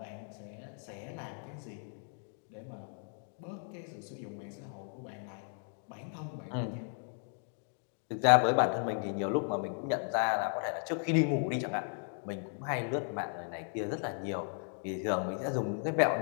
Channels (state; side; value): silent; right; 54 dB below the other